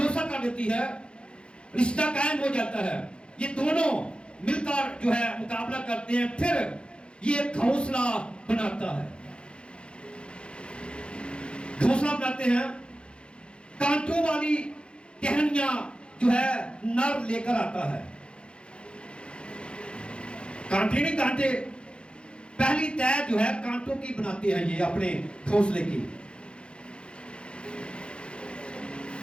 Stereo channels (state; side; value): late; right; 0.056 ms